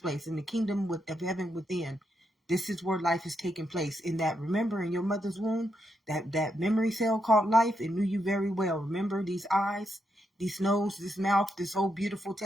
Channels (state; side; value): normal; both; correlation 0.81